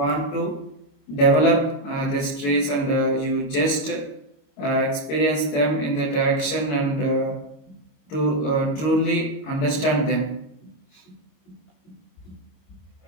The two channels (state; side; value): late; right; 26 ms